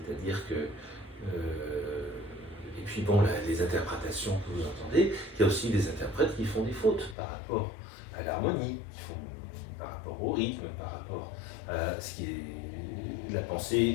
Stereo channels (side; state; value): right; drops out; at 7.2 s